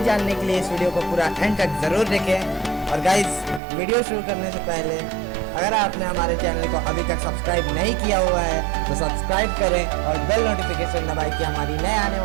जानने के लिए इस वीडियो को पूरा एंड तक ज़रूर देखें। और गाइस, वीडियो शुरू करने से पहले अगर आपने हमारे चैनल को अभी तक सब्सक्राइब नहीं किया हुआ है तो सब्सक्राइब करें और बेल नोटिफिकेशन दबाएं कि हमारी नए आने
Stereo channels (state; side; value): drops out; left; at 3.6 s